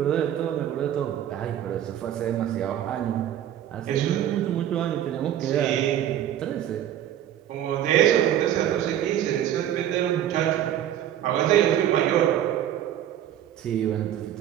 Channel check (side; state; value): left; quieter; 11.1 dB